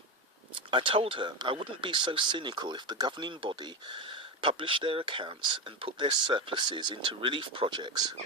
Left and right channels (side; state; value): both; normal; correlation 0.14